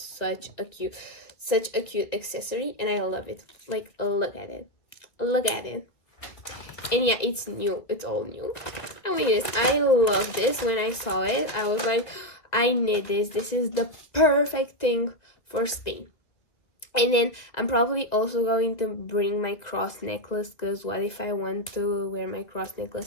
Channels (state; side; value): late; right; 2.0 ms